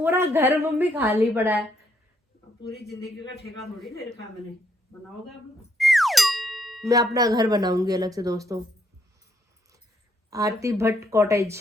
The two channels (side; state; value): both; normal; correlation 0.73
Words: घर मम्मी खाली पड़ा है। पूरी जिंदगी का ठेका थोड़ी ले रखा मैंने, बनाओगे आप? मैं अपना घर बनाऊंगी अलग से दोस्तों, आरती भट्ट कॉटेज।